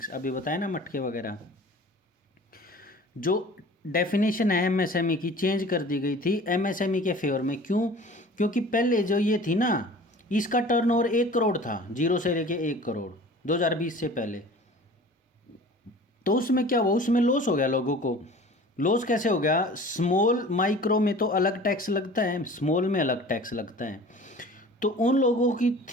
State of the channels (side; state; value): both; normal; correlation 0.43